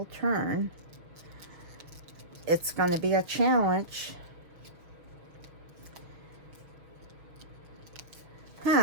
turn. It's going to be a challenge.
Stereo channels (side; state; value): left; late; 6.0 ms